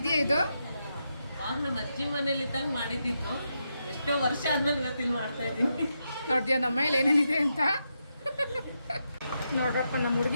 ಇದು? ಆವಾಗ ನಮ್ಮ ಅಜ್ಜಿ ಮನೇಲಿ ಇದ್ದಾಗ ಮಾಡಿದ್ದಿತ್ತು. ಎಷ್ಟೋ ವರ್ಷ ಆದ್ಮೇಲೆ ಇವತ್ತಿಲ್ಲಿ ಮಾಡ್ತಾ ಇದ್ದೀನಿ. ನೋಡ್ತೀಯ ನಮ್ಮ ಮೇಲೆ ಏನೇನಿದೆ ಅಂತ? ನೋಡ್ರಪ್ಪ, ನಮ್ಮ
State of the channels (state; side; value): inverted; both; correlation -0.84